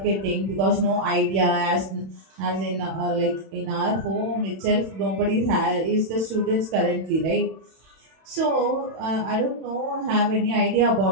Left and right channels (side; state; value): left; late; 31 ms